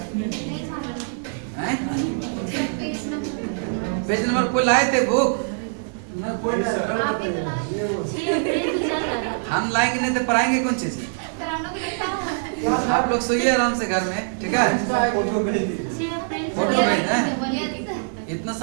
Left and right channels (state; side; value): silent; left; digital silence